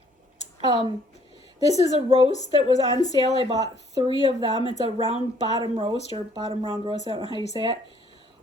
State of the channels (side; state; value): both; normal; correlation 0.62